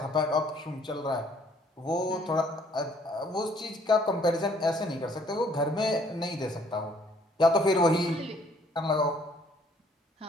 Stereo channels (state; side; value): normal; both; correlation 0.62